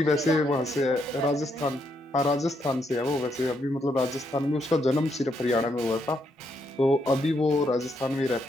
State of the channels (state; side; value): normal; both; correlation 0.77